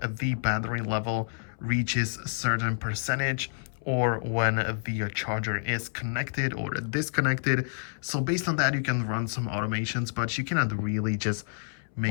battery level reaches a certain percentage, or when the charger is connected or disconnected. So based on that, you can run some automations, but you cannot really just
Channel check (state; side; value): silent; right; 59 dB below the other